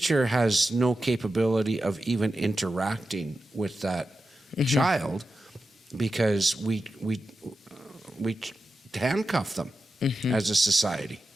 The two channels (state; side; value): normal; both; correlation 0.91